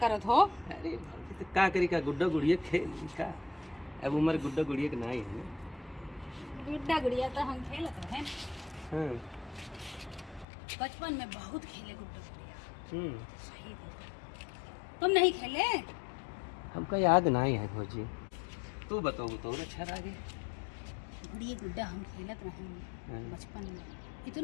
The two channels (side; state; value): right; drops out; at 10.5 s